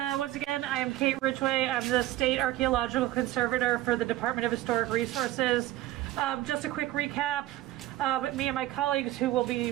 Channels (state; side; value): quieter; left; 15.2 dB